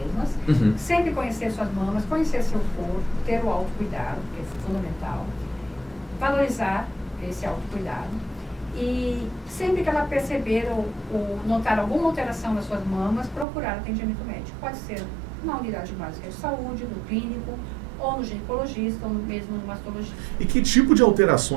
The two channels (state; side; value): drops out; left; at 13.5 s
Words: Sempre conhecer suas mamas, conhecer seu corpo, ter o autocuidado, que é fundamental. Valorizar esse autocuidado. E sempre que ela perceber ou notar alguma alteração nas suas mamas, procurar atendimento médico. Pode ser na unidade básica de saúde, no clínico, ou no ginecologista, ou mesmo no mastologista. E que tipo de